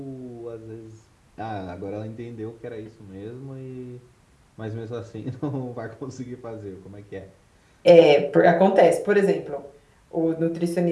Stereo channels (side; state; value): both; identical; correlation 1.00